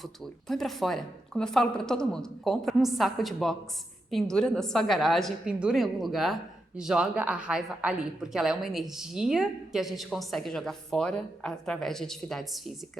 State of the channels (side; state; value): both; normal; correlation 0.85